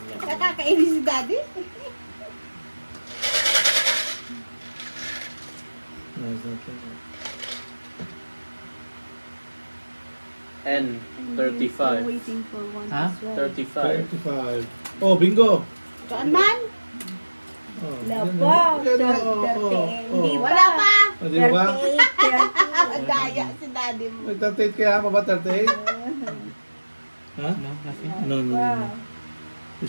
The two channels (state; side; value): inverted; both; correlation -1.00